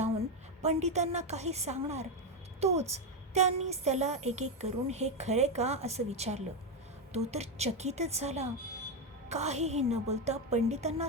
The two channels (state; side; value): normal; both; correlation 0.08